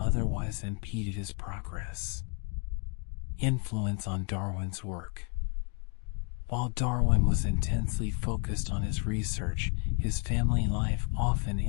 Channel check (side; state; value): right; quieter; 34.9 dB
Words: impeded his progress. Influence on Darwin's work. While Darwin was intensely focused on his research, his family life often